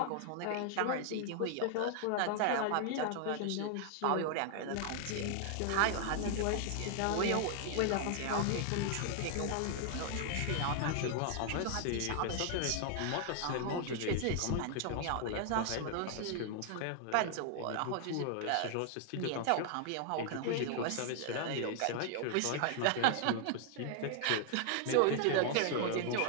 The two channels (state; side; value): different; both; correlation 0.00